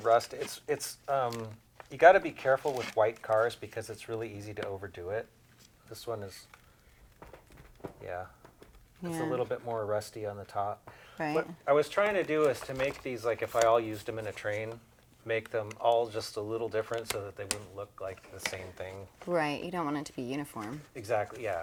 rust. It's you got to be careful with white cars because it's really easy to overdo it. This one is, yeah, it's a Yeah. little bit more rusty on the top. Right. What I was trying to do is to make these, like if I all used them in a train, make them all just a little different so that they wouldn't look like the same thing. Right. You don't want it to be uniform. Exactly,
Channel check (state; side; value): identical; both; correlation 1.00